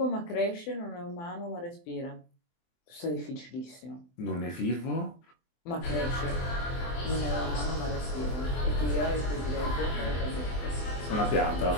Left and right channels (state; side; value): late; right; 24 ms